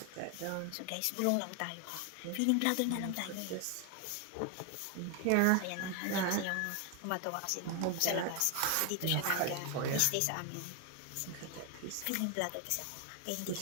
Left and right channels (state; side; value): different; both; correlation 0.01